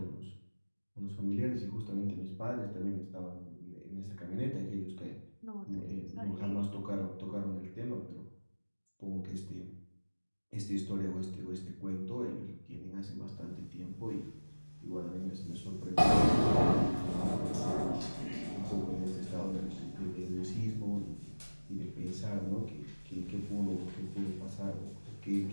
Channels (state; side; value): inverted; both; correlation -1.00